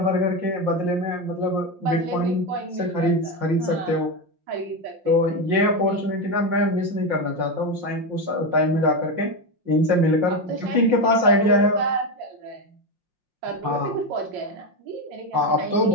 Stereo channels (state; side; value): late; left; 5.7 ms